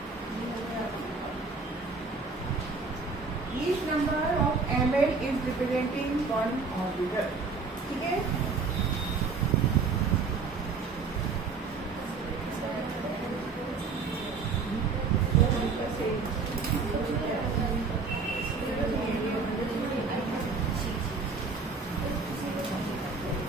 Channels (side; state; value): left; quieter; 4.6 dB